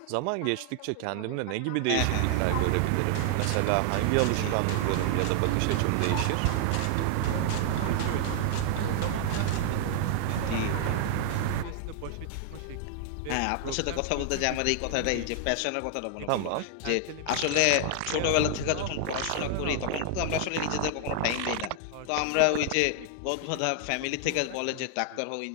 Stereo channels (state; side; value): different; both; correlation -0.01